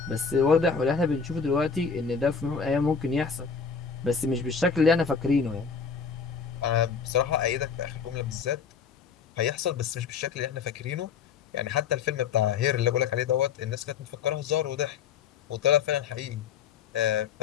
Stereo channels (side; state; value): right; quieter; 6.1 dB